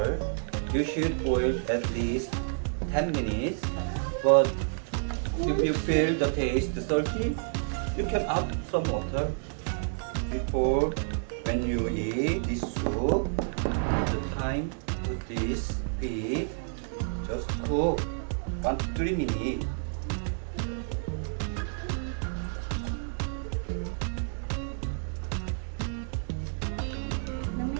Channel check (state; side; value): silent; left; digital silence